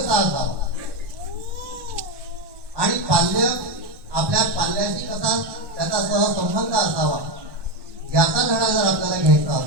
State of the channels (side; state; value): left; late; 1.1 ms